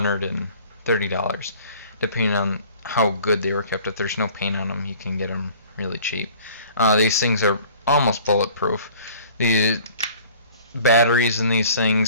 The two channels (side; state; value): both; inverted; correlation -0.49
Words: depending on how good they were kept. If there's no paint on them, you can get them really cheap. These things are almost bulletproof. The batteries in these